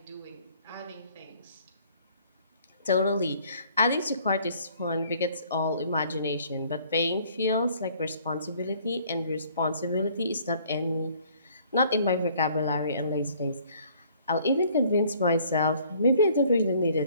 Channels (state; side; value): inverted; both; correlation -0.59